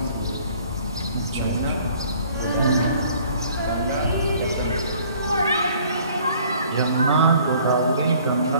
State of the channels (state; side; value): inverted; both; correlation -0.56